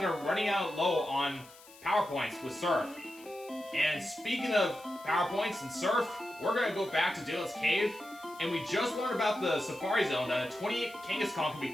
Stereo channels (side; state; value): left; noise; hiss, 22 dB below the sound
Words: we're running out low on power points with Surf. And speaking of power points and Surf, we're going to go back to Diglett's Cave. And we just learned about the Safari Zone that a 28 Kangaskhan can be